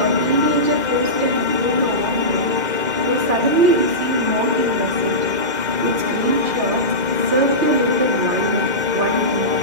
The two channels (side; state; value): left; late; 2.4 ms